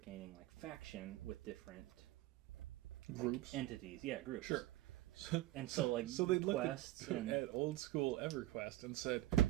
like faction with different Groups. entities. Yeah, groups. Sure. And so like So they looked quests at old school EverQuest and said,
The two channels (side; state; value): left; quieter; 15.8 dB